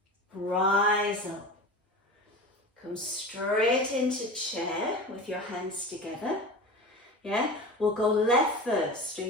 Rise up. Come straight into chair with your hands together. Yeah, we'll go left first. Are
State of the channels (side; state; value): both; normal; correlation 0.31